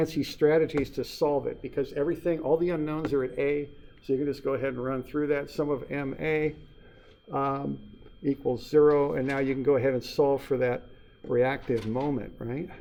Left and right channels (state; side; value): identical; both; correlation 1.00